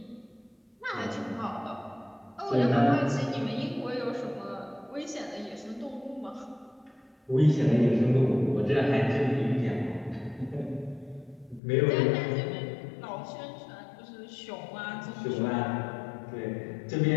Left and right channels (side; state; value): right; drops out; at 11.6 s